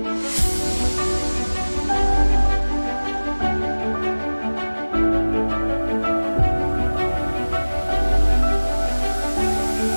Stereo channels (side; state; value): both; inverted; correlation -1.00